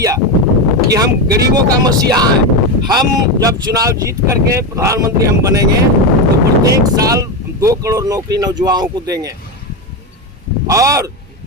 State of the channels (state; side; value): normal; both; correlation 0.14